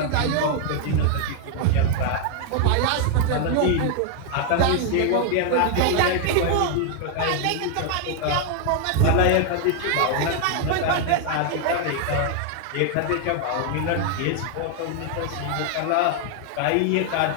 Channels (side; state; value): both; different; correlation 0.00